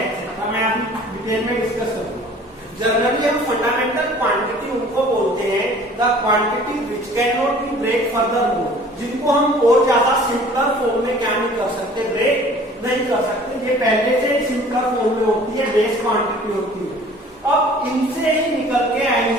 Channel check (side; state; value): both; normal; correlation 0.49